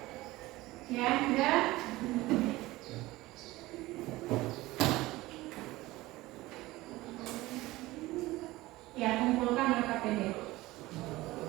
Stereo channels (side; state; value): left; quieter; 18.8 dB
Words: sudah. Ya, kumpulkan LKPD.